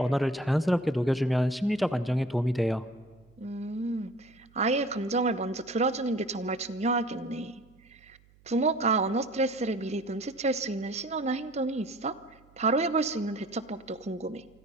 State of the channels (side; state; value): right; noise; hum, 29 dB below the sound